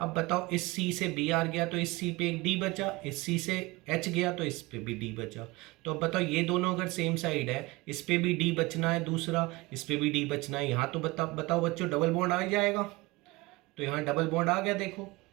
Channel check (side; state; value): left; quieter; 22.6 dB